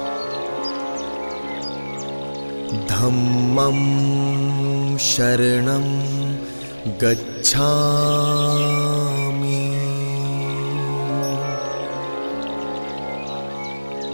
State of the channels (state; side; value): inverted; both; correlation -1.00